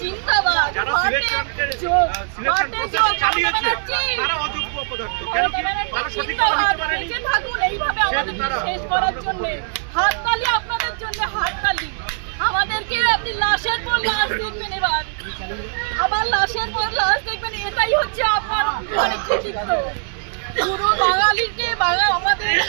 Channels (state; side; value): silent; left; digital silence